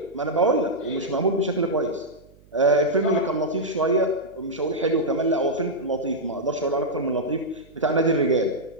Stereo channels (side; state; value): right; noise; hum, 27 dB below the sound